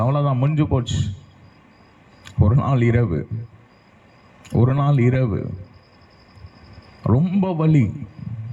அவ்வளவுதான், முடிஞ்சு போச்சு. ஒரு நாள் இரவு ரொம்ப வலி.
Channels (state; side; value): identical; both; correlation 1.00